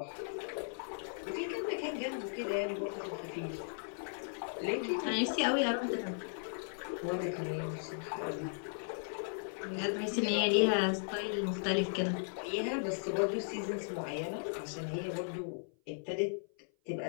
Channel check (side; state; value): right; silent; 53 dB below the other